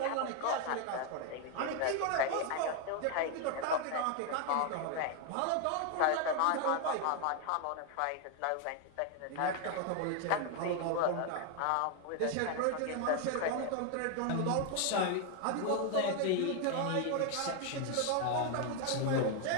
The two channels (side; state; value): both; different; correlation 0.01